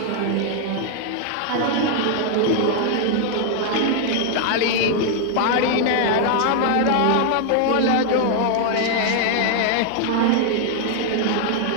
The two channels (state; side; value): different; both; correlation 0.00